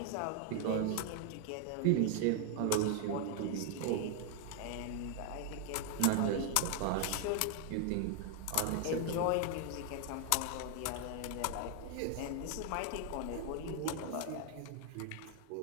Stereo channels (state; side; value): different; both; correlation 0.01